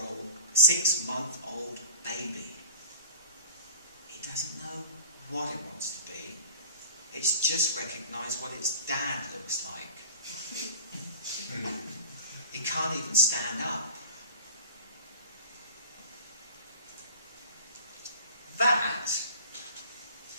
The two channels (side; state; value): both; inverted; correlation -0.40